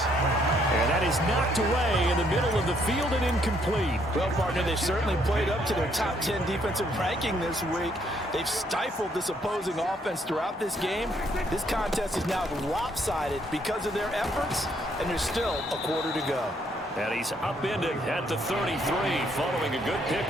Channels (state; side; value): normal; both; correlation 0.69